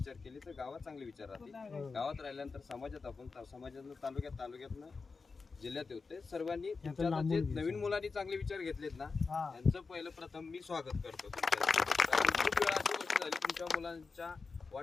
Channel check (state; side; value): quieter; right; 4.5 dB